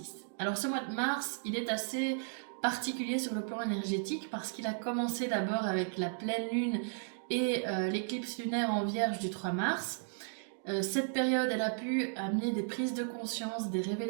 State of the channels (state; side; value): silent; left; digital silence